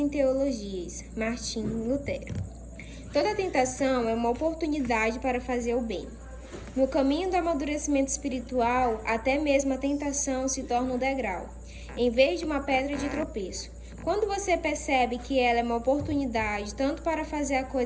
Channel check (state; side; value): identical; both; correlation 1.00